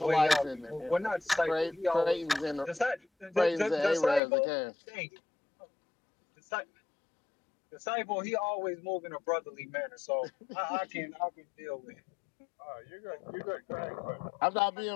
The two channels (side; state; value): right; drops out; at 4.2 s